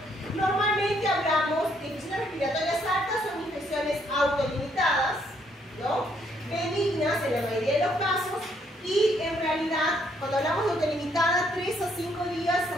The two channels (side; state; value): both; normal; correlation 0.70